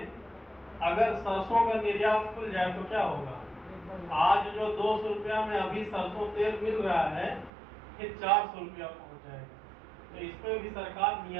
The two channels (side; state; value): left; drops out; at 7.5 s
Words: अगर सरसों का निर्यात खुल जाए तो क्या होगा, आज जो 200 रुपया में अभी सरसों तेल मिल रहा है, फिर 400 रुपया पहुंच जाएगा। तो इस पर भी सरकार